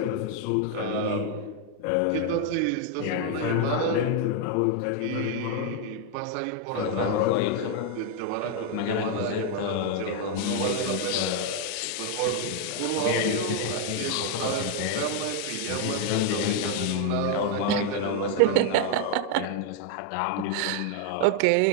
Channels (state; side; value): different; both; correlation 0.01